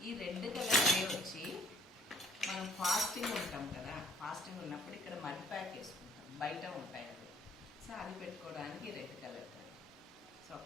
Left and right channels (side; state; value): both; normal; correlation 0.58